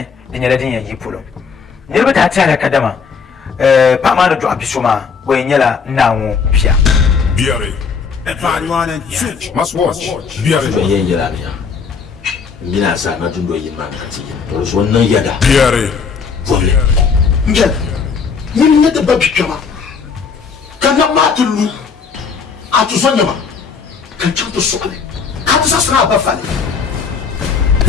din yala din yayi pulo ne ba ta tare kadama pa ma do abisuma boy nyala nawo bia Biare. Everyone and must watch. Biare. yin yira ne ngina sa na tundo yin man kati to so nan yada Biare. vole ngel yin ne da babi kama kana matulu atu sonya ma kan chanto sokale ka ta sasra ba fale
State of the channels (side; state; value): right; quieter; 5.7 dB